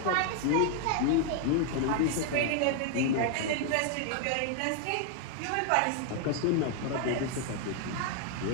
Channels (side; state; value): both; different; correlation 0.00